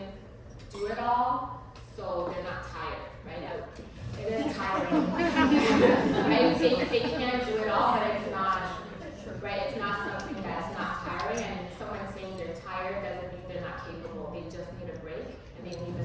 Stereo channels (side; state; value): both; identical; correlation 1.00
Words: do it all, so they can do it all, but it's not, right, it's not something that's not tiring, and someone saying they're tired doesn't mean they're not capable. They just need a break, and they need